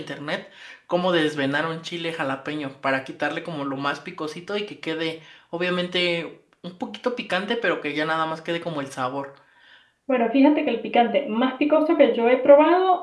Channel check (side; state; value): both; identical; correlation 1.00